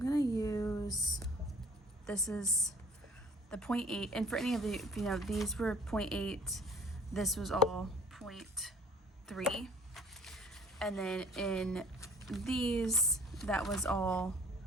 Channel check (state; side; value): normal; both; correlation 0.52